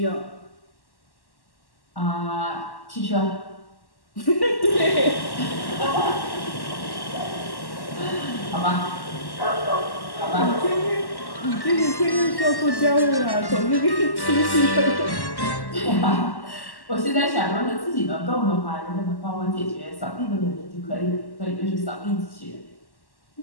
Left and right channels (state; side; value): late; right; 1.1 ms